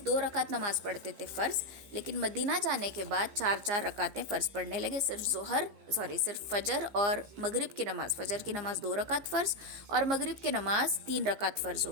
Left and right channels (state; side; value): late; left; 15 ms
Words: 2 رکعت نماز پڑھتے تھے فرض, لیکن مدینہ جانے کے بعد 4 رکعتیں فرض پڑھنے لگے. صرف فجر اور مغرب کی نماز, فجر کی نماز 2 رکعت فرض اور مغرب کی نماز 3 رکعت فرض